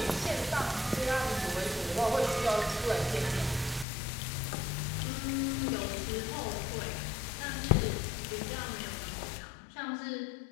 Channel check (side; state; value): right; drops out; at 3.9 s